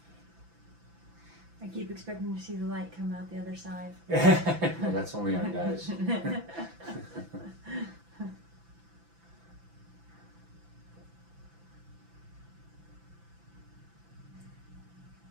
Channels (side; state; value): left; late; 5.9 ms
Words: I keep expecting to see the light come out the other side. No, that's only our guys.